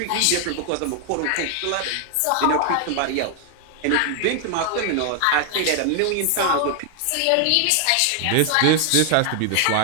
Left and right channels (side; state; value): both; different; correlation 0.00